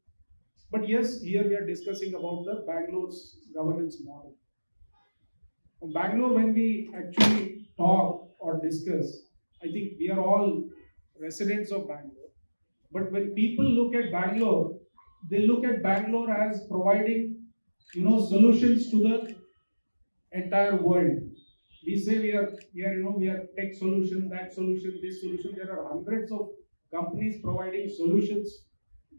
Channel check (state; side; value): inverted; both; correlation -1.00